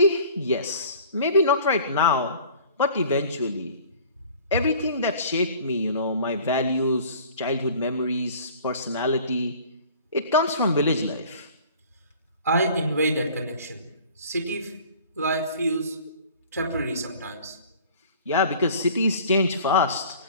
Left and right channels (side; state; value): both; inverted; correlation -0.47